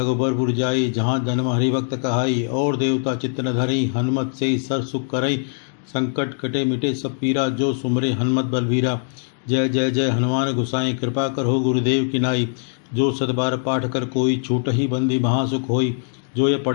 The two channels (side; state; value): right; silent; digital silence